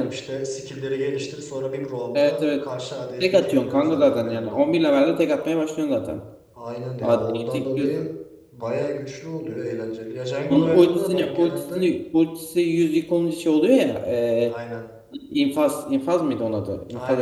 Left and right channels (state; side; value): identical; both; correlation 1.00